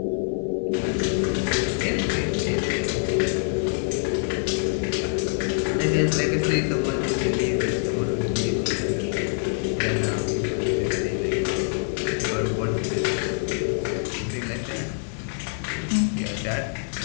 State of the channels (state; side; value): silent; right; 62 dB below the other